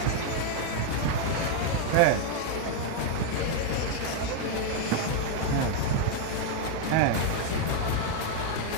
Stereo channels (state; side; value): different; both; correlation 0.01